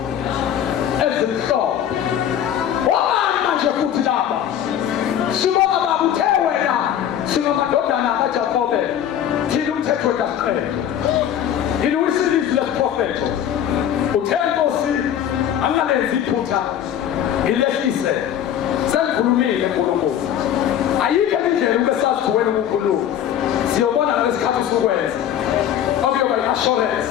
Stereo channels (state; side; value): quieter; right; 10.1 dB